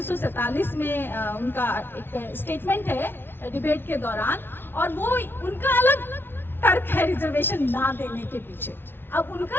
में उनका एक स्टेटमेंट है डिबेट के दौरान, और वो उनका अलग तर्क है रिजर्वेशन ना देने के पीछे। अब उनका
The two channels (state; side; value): late; right; 0.11 ms